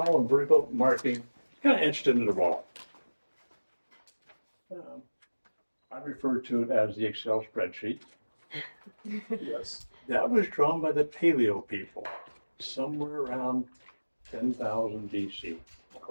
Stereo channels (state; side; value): inverted; both; correlation -1.00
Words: and vertical marking, kind of etched into the wall. I refer to it as the Excel spreadsheet. Yes. That was drawn by the Paleo people, somewhere around 10,000 BC,